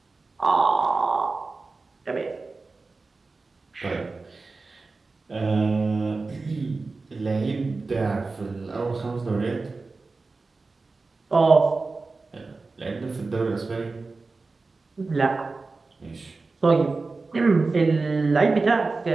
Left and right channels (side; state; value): left; quieter; 3.8 dB